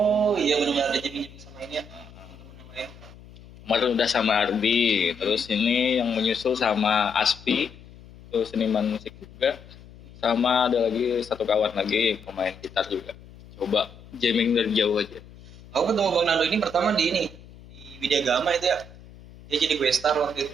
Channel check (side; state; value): left; noise; hum, 20 dB below the sound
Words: iya benar-benar ada jamming sama ini ya. Teman-teman yang lain. Kemarin udah sama Ardi, terus ini yang menyusul sama Aspi, terus seniman musik juga, sama ada lagi satu kawan lagi pemain gitar juga. Coba jamming dari jauh aja. Aku ketemu Bang Nando ini pertama di Widya Gama itu ya. Dia jadi gue star waktu